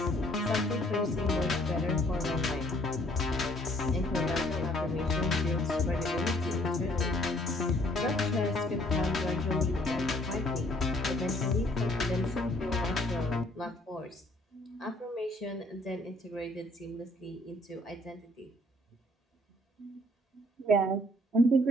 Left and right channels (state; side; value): normal; both; correlation 0.61